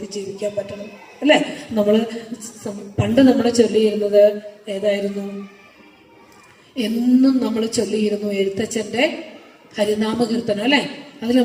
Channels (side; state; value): both; identical; correlation 1.00